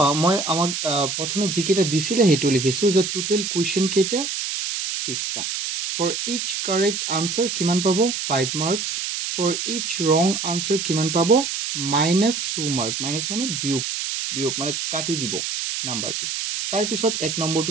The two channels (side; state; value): right; noise; hiss, 3 dB below the sound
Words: মই আমাক প্ৰথমে যিকেইটা দিছিলে হেতু লিখিছো যে টোটাল কোৱেশ্চন কেইটা 20টা for each correct answer কিমান পাব 5 marks for each wrong answer কিমান পাব -2 mark মাইনাস মানে বিয়োগ মানে কাটি দিব নাম্বাৰটো তাৰ পিছত এক